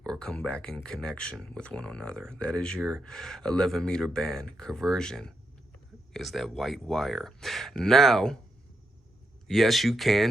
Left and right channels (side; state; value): both; normal; correlation 0.82